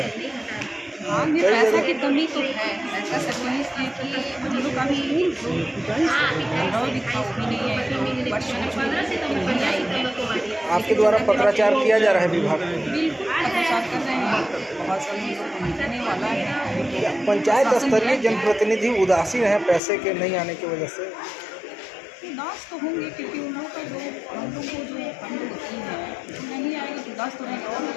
हाँ, में पैसा की कमी तो है। ऐसा सकनी इसलिए कि हम लोग अभी भी नहीं है, वर्ष नहीं आई। आपके द्वारा पत्राचार किया जा रहा है विभाग में? बिल्कुल पत्राचार कर रहे हैं, बहुत सारे लोगों को मिलने वाला है। पंचायत स्तरीय जनप्रतिनिधि उदासीन है पैसे के नहीं आने की वजह से? उदास तो होंगे, क्योंकि उन लोगों का जो हम लोग को जो फंड होती है नहीं आएगी तो उदास तो रहेंगे। और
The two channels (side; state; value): right; drops out; at 19.8 s